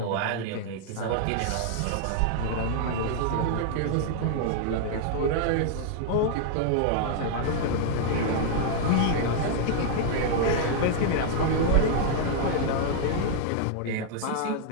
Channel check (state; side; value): different; both; correlation -0.01